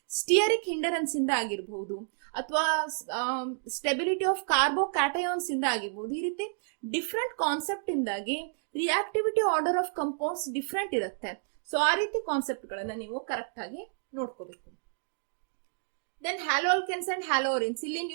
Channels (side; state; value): left; silent; digital silence